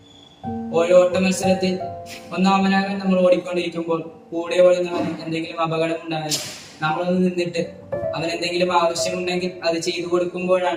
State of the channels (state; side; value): identical; both; correlation 1.00